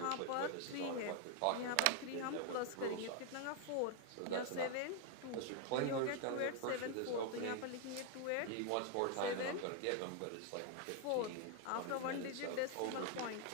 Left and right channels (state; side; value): different; both; correlation 0.00